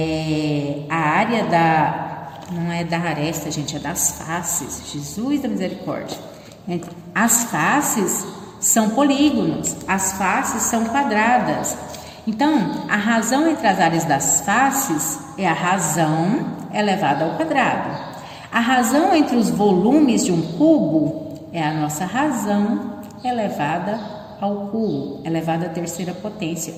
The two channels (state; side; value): identical; both; correlation 1.00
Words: a área não é da aresta, gente, é das faces. Jesus da misericórdia. As faces são polígonos, as faces são quadradas. Então, a razão entre as áreas das faces é a razão elevada ao quadrado. A razão entre os volumes de um cubo é a nossa razão elevada ao cubo, elevada à terceira potência,